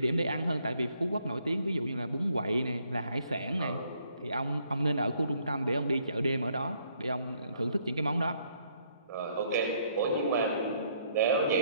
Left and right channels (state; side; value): inverted; both; correlation -0.68